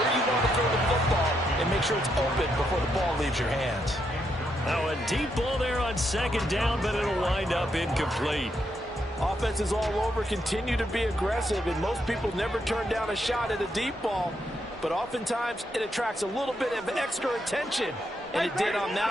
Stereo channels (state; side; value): normal; both; correlation 0.79